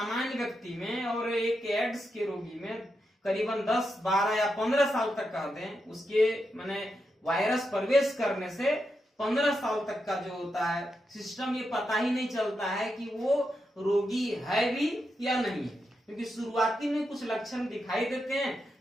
व्यक्ति में और एक एड्स के रोगी में करीबन 10, 12 या 15 साल तक कह दें, उसके माने वायरस प्रवेश करने से 15 साल तक का जो होता है सिस्टम, ये पता ही नहीं चलता है कि वो रोगी है भी या नहीं है। क्योंकि शुरुआती में कुछ लक्षण दिखाई देते हैं,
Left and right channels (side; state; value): both; normal; correlation 0.86